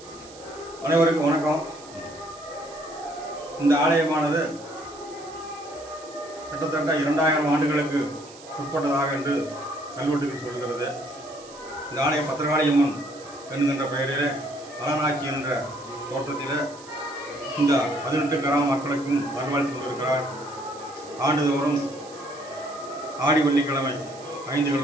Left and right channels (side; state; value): right; noise; hiss, 20 dB below the sound